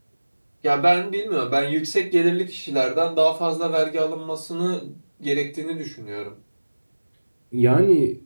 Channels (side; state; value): both; inverted; correlation -1.00